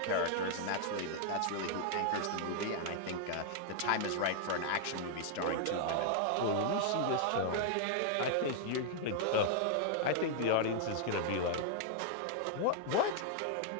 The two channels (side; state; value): both; different; correlation -0.01